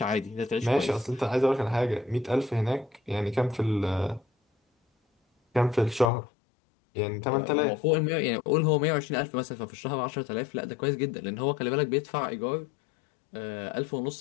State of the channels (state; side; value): drops out; right; at 6.1 s